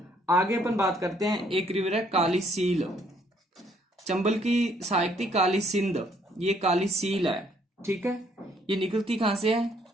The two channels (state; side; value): normal; both; correlation 0.66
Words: आगे अपन बात करते हैं, एक रिवर है काली सील। चंबल की सहायक थी काली सिंध, ये काली सील है। ठीक है, ये निकलती कहां से है?